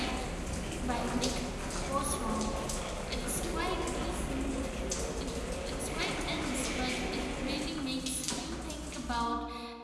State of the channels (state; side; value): identical; both; correlation 1.00